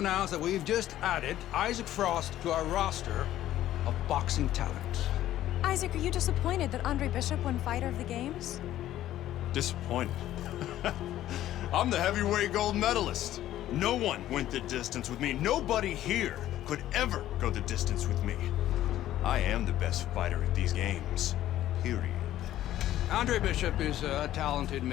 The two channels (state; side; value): quieter; right; 13.2 dB